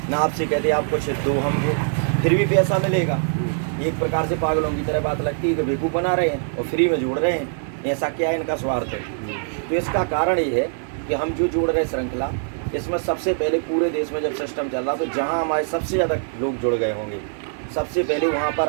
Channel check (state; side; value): silent; left; digital silence